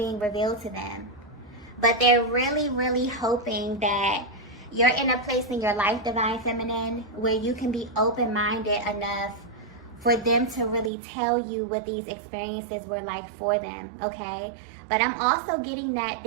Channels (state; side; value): drops out; left; at 10.9 s